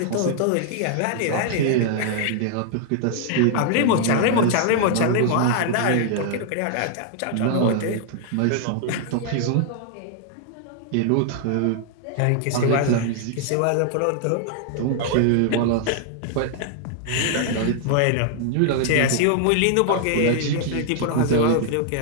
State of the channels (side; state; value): both; different; correlation 0.00